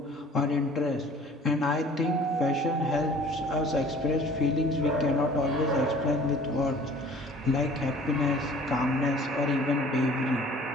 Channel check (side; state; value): both; normal; correlation 0.49